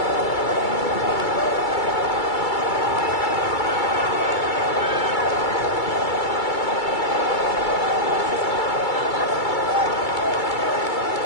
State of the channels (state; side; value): late; right; 2.3 ms